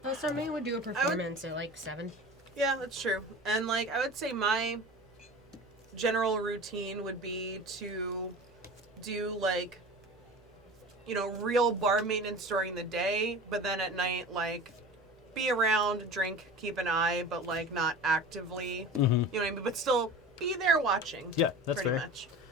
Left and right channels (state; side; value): normal; both; correlation 0.36